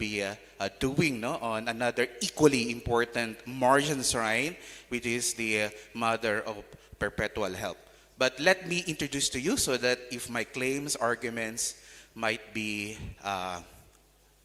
doing, no, on another equally important Marian shrine, which is the Mother of Perpetual Help. But let me introduce to you so that if my claims, arguments might be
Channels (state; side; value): identical; both; correlation 1.00